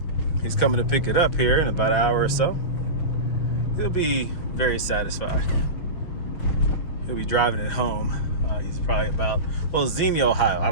He's coming to pick it up here in about an hour or so. He'll be very satisfied. He'll be driving it home. He's probably about, well, Xenia, Ohio. I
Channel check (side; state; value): right; late; 6.4 ms